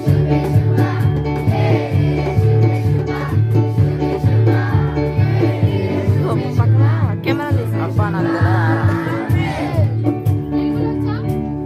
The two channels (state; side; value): identical; both; correlation 1.00